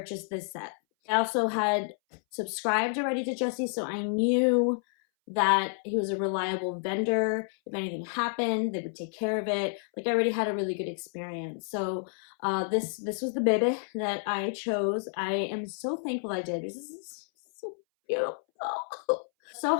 this set. I also had subscribed already to Jessie, so I knew that he was a reliable vendor. If anything happened, they would take care of it. Like, I already had a really good experience. So this was the baby that I chose. I am so thankful I did because this is so beautiful.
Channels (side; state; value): right; silent; 58 dB below the other